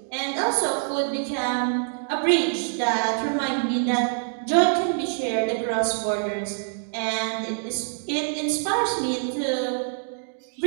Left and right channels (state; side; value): silent; left; digital silence